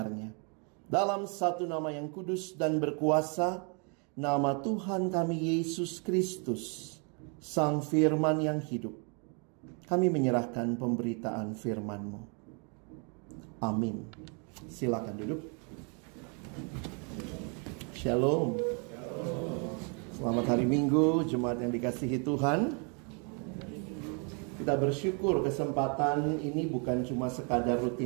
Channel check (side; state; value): left; quieter; 37.1 dB